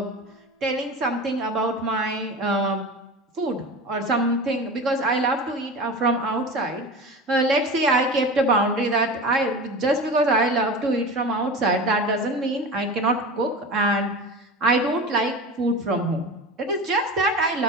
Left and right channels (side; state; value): both; normal; correlation 0.31